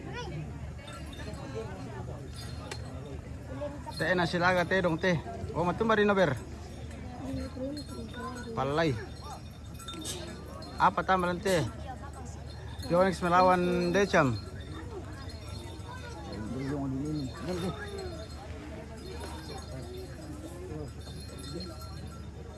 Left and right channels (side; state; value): both; identical; correlation 1.00